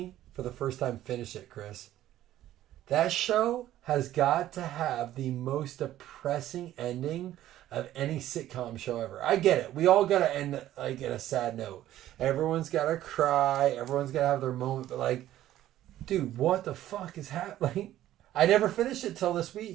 for the first time, finished it, Chris. That show has got to have the most depressing ending of any sitcom show ever. I get it. We all got to end like in a sad note. Everyone's got to cry. Everyone's got to have their moment. But like, dude, what the fuck is happening? I never finished it till this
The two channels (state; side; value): quieter; left; 13.4 dB